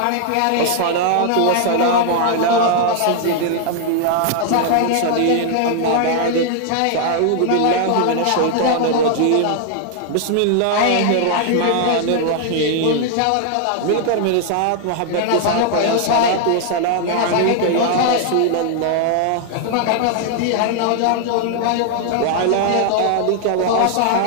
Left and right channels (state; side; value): different; both; correlation 0.00